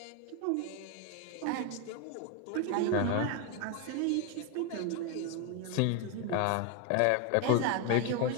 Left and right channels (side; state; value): both; different; correlation 0.01